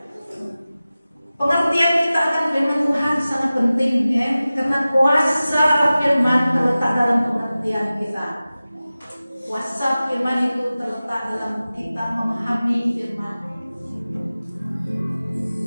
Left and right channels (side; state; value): both; inverted; correlation -0.96